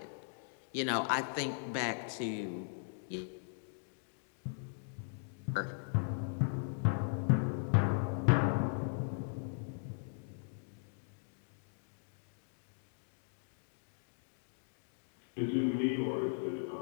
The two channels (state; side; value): silent; right; digital silence